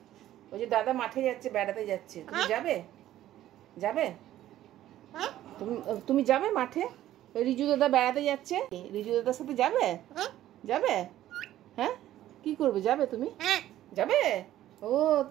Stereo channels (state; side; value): quieter; left; 13.3 dB